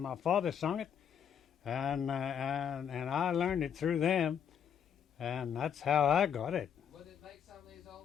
father sung it, and I learned it through them, and that's how I got it. Would it make some of these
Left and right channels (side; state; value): right; quieter; 8.2 dB